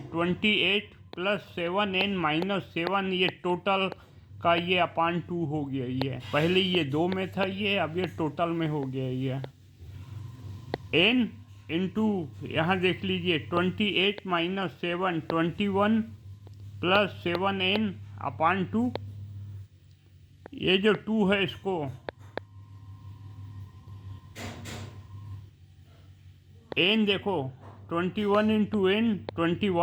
प्लस 7n माइनस 7, ये टोटल का ये अपॉन 2 हो गया। ये पहले ये 2 में था, ये अब ये टोटल में हो गया। ये n इंटू यहाँ देख लीजिए 28 माइनस 7 21 प्लस 7n अपॉन 2। ये जो 2 है इसको n देखो 21 into n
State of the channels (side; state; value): both; identical; correlation 1.00